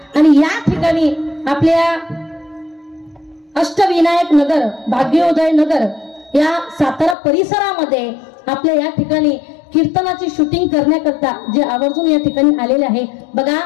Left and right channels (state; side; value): drops out; right; at 7.2 s